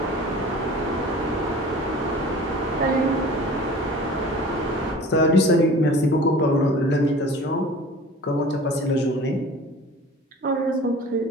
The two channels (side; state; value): both; normal; correlation 0.43